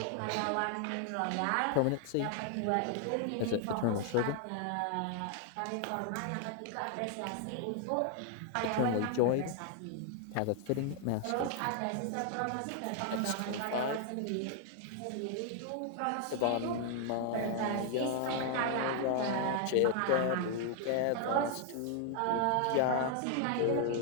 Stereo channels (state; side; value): different; both; correlation 0.00